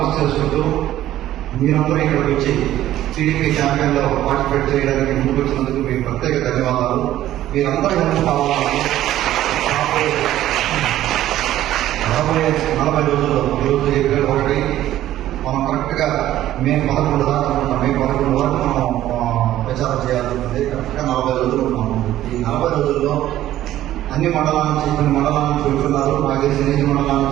చేసుకుంటూ మీరందరూ ఇక్కడికి వచ్చి టీడీపీ క్యాంపెయిన్లో పార్టిసిపేట్ చేయడానికి ముందుకు వచ్చినందుకు మీకు ప్రత్యేక ధన్యవాదాలు. మీరందరూ హెల్ప్ కావాలని రాబోయే 40 రోజుల్లో ఈరోజు ఏప్రిల్ 1 మనం కరెక్ట్గా మే 11 దాకా అనుకుంటాం. మే 11 వరకు మనం ప్రచారం చేయాల్సి ఉంటుంది. కరెక్ట్గా 40 రోజులు ఉన్నాము. ఈ 40 రోజుల్లో అన్ని మండలాల నుంచి, కొన్ని మండలాల నుంచి వెళ్తున్నారు. నాకు తెలిసి 8 మండలాల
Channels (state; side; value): quieter; left; 13.4 dB